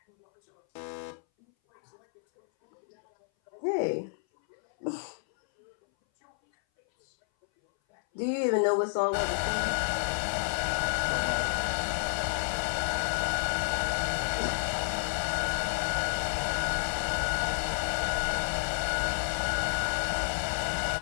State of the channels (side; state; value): right; silent; 58 dB below the other